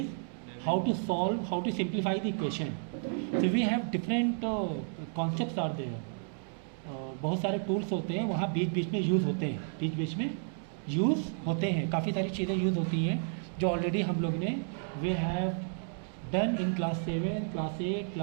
how to solve, how to simplify the equation. So we have different concepts are there. बहुत सारे tools होते हैं, वहाँ बीच बीच में यूज़ होते हैं, बीच बीच में यूज़ होते हैं, काफ़ी सारी चीज़ें यूज़ होती हैं जो ऑलरेडी हम लोग ने we have done in class 7, class 8,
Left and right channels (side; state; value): left; silent; 56 dB below the other